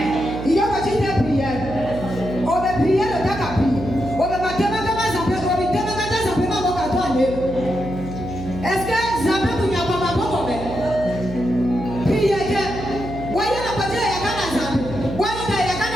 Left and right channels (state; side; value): noise; right; hum, 9 dB below the sound